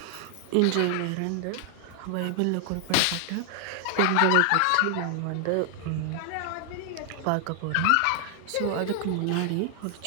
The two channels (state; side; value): different; both; correlation 0.00